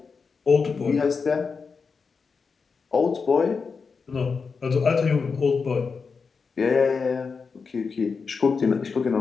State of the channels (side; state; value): right; quieter; 5.1 dB